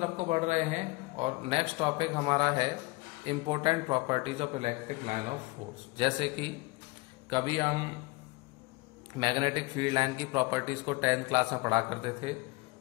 को बढ़ रहे हैं और नेक्स्ट टॉपिक हमारा है important properties of electric line of force. जैसे कि कभी हम मैग्नेटिक फील्ड लाइन की प्रॉपर्टीज को 10th क्लास में पढ़ा करते थे,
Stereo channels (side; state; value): right; quieter; 24.8 dB